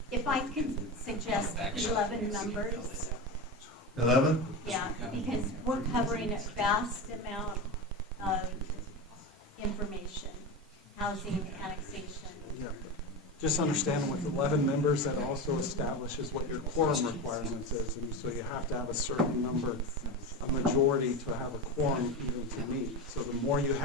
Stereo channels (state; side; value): normal; both; correlation 0.21